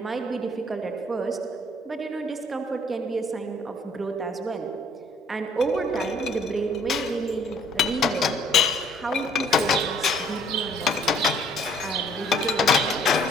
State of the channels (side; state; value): both; normal; correlation 0.58